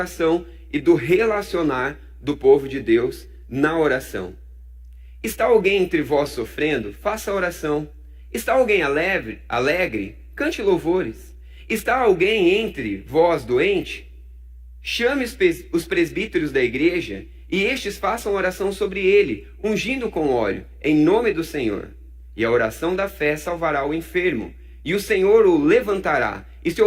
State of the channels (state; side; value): identical; both; correlation 1.00